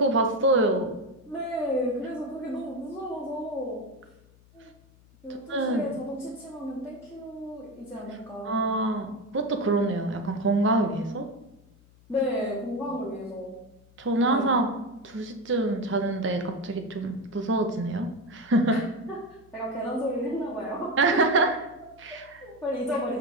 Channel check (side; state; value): left; noise; hum, 27 dB below the sound